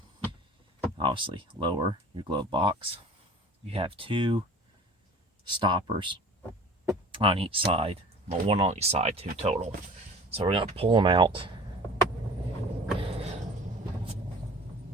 Obviously lower your glove box. You have two stoppers on each side, well, one on each side, two total. So we're going to pull them out,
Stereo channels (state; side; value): normal; both; correlation 0.43